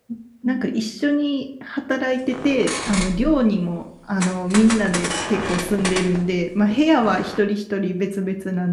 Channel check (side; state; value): both; identical; correlation 1.00